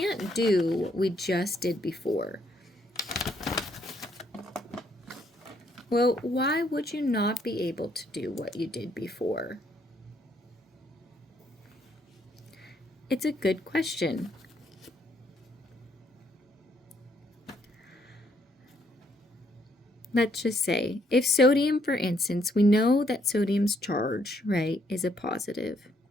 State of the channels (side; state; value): both; normal; correlation 0.71